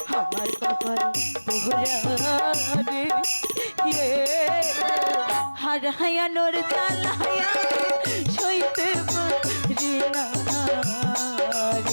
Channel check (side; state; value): both; inverted; correlation -1.00